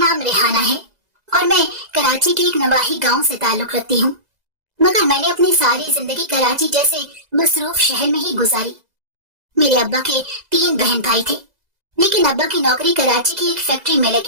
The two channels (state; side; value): late; left; 2.0 ms